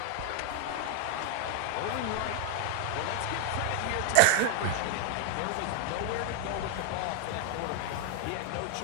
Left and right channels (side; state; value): both; different; correlation 0.00